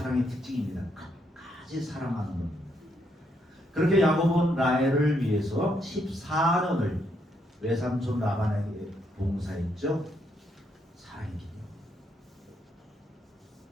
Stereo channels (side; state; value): both; normal; correlation 0.75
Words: 특징입니다. 끝까지 사랑하는 겁니다. 그렇게 야곱은 라헬을 위해서 14년을 외삼촌 라반에게 봉사했죠. 사랑했기 때문에.